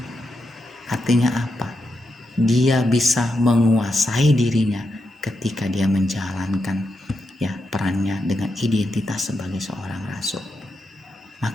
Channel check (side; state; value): both; normal; correlation 0.85